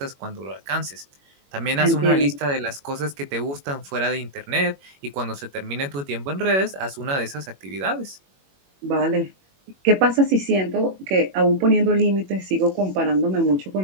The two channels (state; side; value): late; left; 21 ms